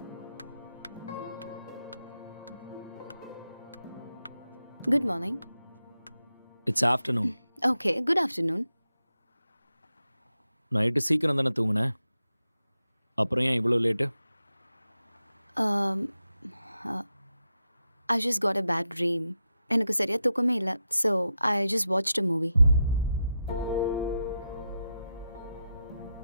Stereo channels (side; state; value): both; inverted; correlation -0.87